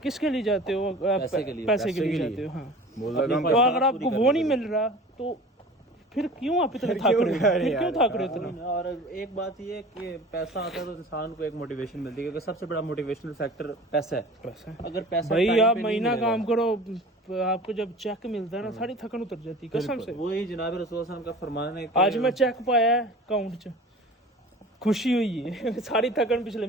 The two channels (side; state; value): both; normal; correlation 0.40